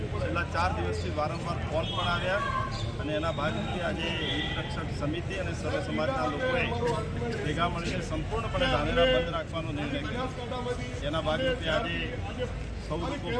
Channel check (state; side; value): identical; both; correlation 1.00